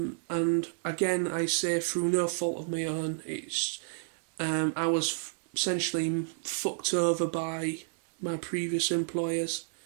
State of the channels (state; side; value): silent; left; digital silence